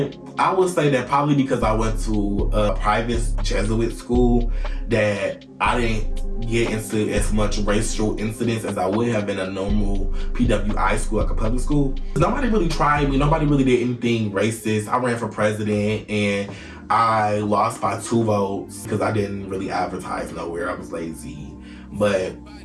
I would say that probably because I went to a private Jesuit school that I didn't get into as much racial incidents as I would have in a normal PWI school, like a public school. Nobody really tried me. Nobody really did anything racist. I ran for president and I lost by 2 votes because I didn't really advertise nowhere. I was lazy. But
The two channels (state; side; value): identical; both; correlation 1.00